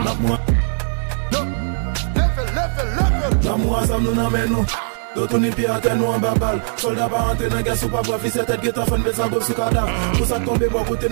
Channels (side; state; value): left; silent; 66 dB below the other